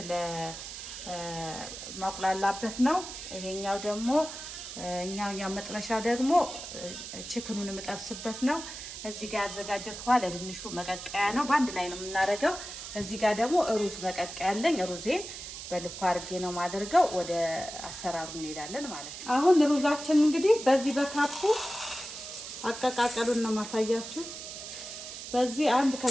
ለማቁላላበት ነው። ይሄኛው ደግሞ እኛው መጥበሻ ደግሞ ችክኑን የምጠብስበት ነው። እዚህ ጋር ያዘጋጀሁት ውሃ ለድንሹ መቀቀያ ነው። በአንድ ላይ ነው የምናደርገው። እዚህ ጋር ደግሞ ሩዝ መቀቀያ አለኝ። ሩዜን በልኩ አድርጌ ነው የማደርገው። ወደ አሰራሩ እንሄዳለን ማለት ነው። አሁን ሩዛችን እንግዲህ በዚህ በካፑ አቀቃቀሉን ነው ማሳያችሁ። በዚህ 1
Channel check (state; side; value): noise; right; hiss, 10 dB below the sound